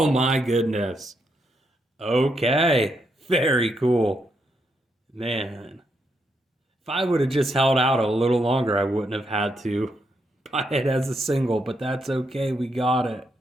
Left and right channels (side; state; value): both; normal; correlation 0.79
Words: my goodness. Okay, very cool. Man. If I would have just held out a little longer, I wouldn't have had to buy it as a single, but that's okay. We got it.